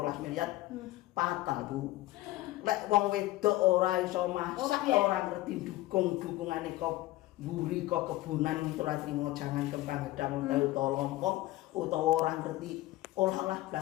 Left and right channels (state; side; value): quieter; right; 17.5 dB